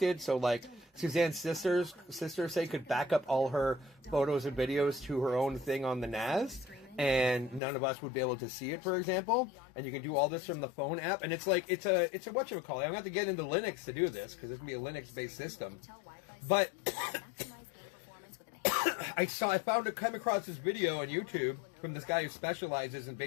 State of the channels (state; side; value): drops out; right; at 7.6 s